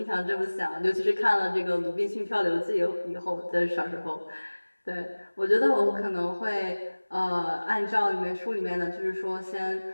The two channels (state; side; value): inverted; both; correlation -1.00